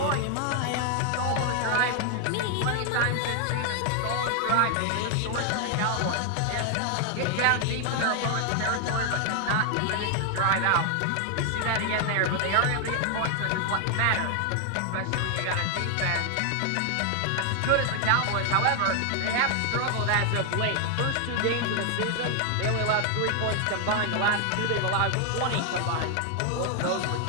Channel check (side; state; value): both; different; correlation 0.00